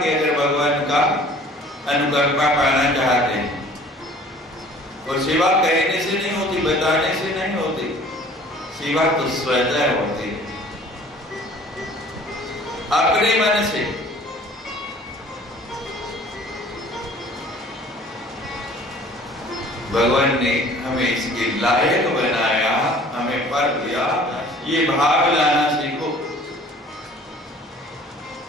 अगर भगवान का अनुकंपा पाना चाहते हैं, और सेवा कहने से नहीं होती, बताने से नहीं होती, सेवा तो स्वतः होती है, अपने मन से। भगवान ने हमें इसके लायक बनाया, हमें पर दिया। ये भाव लाना सीखो।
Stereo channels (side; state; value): both; normal; correlation 0.50